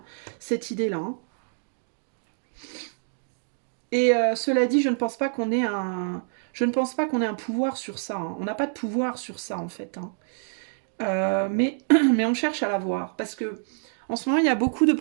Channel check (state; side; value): silent; left; digital silence